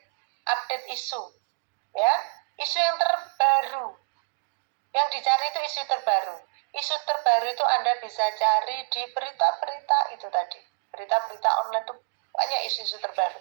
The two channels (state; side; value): silent; left; digital silence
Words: Update isu, ya, isu yang terbaru. Yang dicari itu isu terbaru. Isu terbaru itu Anda bisa cari di berita-berita itu tadi. Berita-berita online itu banyak isu-isu